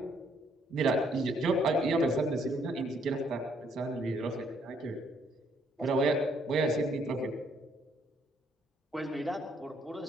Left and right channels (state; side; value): normal; both; correlation 0.68